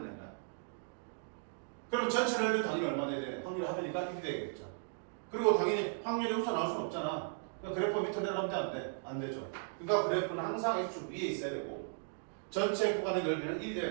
거야. 그럼 전체 넓이는 당연히 얼마 돼야 돼? 확률이 하니까 1이 되겠죠. 그리고 당연히 확률이 우선 나올 수는 없잖아. 그러니까 그래프 밑으로 내려가면 안 돼? 안 되죠. 그러니까 그래프는 항상 X축 위에 있어야 되고 전체 구간의 넓이는 1이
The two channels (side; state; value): left; silent; digital silence